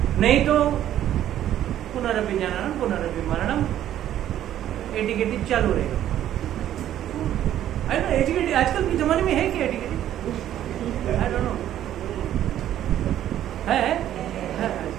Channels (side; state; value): left; quieter; 11.7 dB